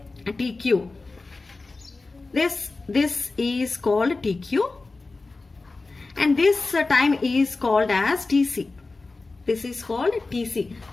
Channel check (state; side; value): quieter; right; 3.6 dB